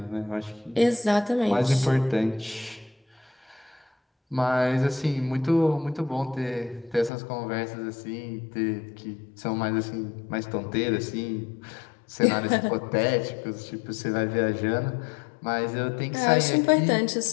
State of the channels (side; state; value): right; drops out; at 7.1 s